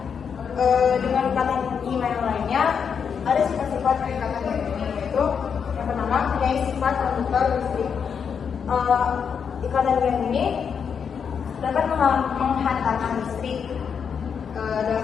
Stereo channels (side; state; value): right; quieter; 6.8 dB